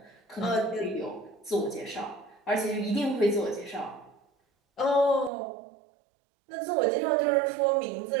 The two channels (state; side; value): drops out; left; at 5.3 s